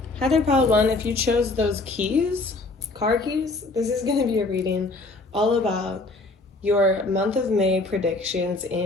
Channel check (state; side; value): quieter; right; 3.2 dB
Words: Hi there, pile one. If you chose those keys, car keys, this is going to be a reading all about your month of May predictions